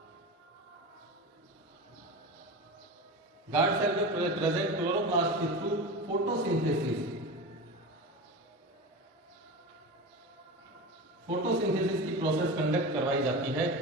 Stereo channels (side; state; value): both; normal; correlation 0.27